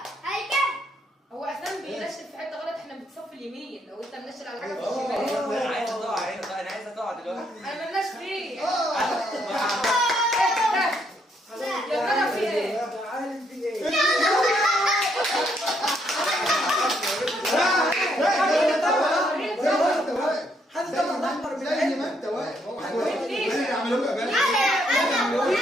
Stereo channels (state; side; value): normal; both; correlation 0.73